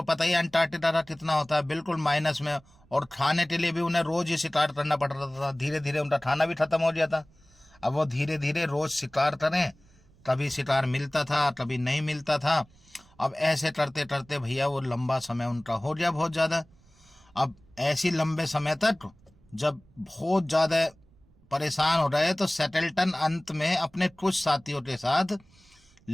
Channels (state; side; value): noise; right; rumble, 29 dB below the sound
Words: पता ही अंटार्कटिका का कितना होता है, बिल्कुल माइनस में, और खाने के लिए भी उन्हें रोज ही शिकार करना पड़ रहा था। धीरे धीरे उनका खाना भी खत्म हो गया था। अब वो धीरे धीरे रोज शिकार करें, कभी शिकार मिलता था कभी नहीं मिलता था। अब ऐसे करते करते भैया वो लंबा समय उनका हो गया बहुत ज़्यादा। अब ऐसी लंबे समय तक जब बहुत ज़्यादा परेशान हो रहे तो सेटल्टन अंत में अपने कुछ साथियों के साथ